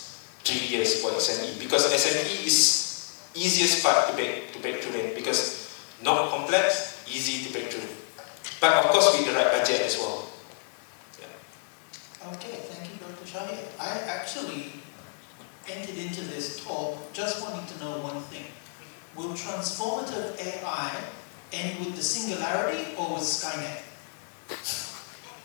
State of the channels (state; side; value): silent; right; digital silence